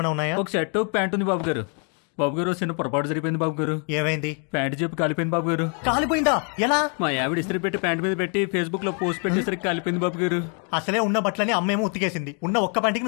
ఉన్నాయా? ఒక షర్ట్ ఒక ప్యాంట్ ఉంది బాబు గారు. బాబు గారు, చిన్న పొరపాటు జరిపోయింది బాబు గారు. ఏమైంది? ప్యాంట్ చెప్పి కాలిపోయింది బాబు గారు. కాలిపోయిందా? ఎలా? మా ఆవిడ ఇస్త్రీ పెట్టి ప్యాంట్ మీద పెట్టి ఫేస్బుక్ లో పోస్ట్ పెట్టేసరికి కాలిపోయింది బాబు గారు. అసలే ఉన్న బట్టలని అమ్మేమో ఉతికేసింది. ఉన్న ఒక్క పంటికి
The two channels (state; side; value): quieter; right; 39.3 dB